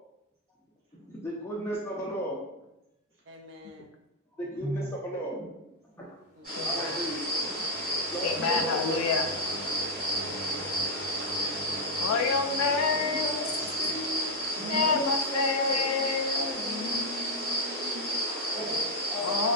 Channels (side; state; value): both; normal; correlation 0.00